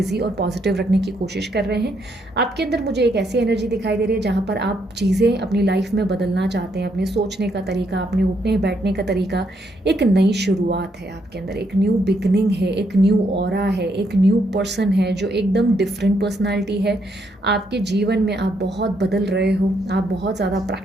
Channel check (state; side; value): normal; both; correlation 0.75